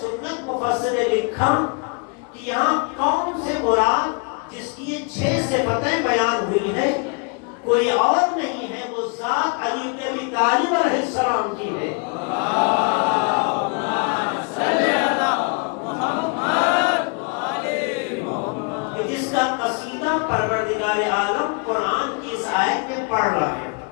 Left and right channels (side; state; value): right; quieter; 34.3 dB